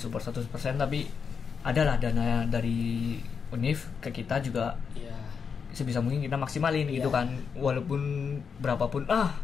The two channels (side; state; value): right; quieter; 6.2 dB